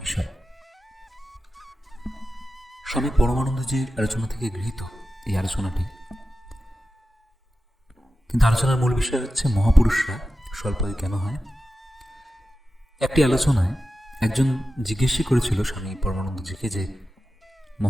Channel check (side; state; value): both; normal; correlation 0.93